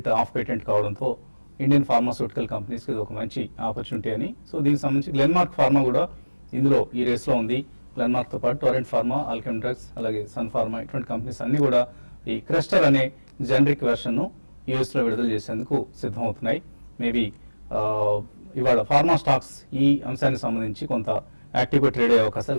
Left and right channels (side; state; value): both; inverted; correlation -1.00